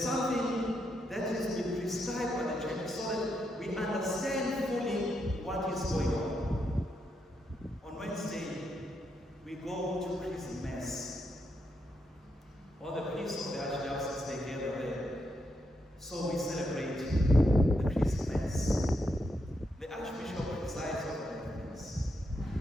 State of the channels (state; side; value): normal; both; correlation 0.81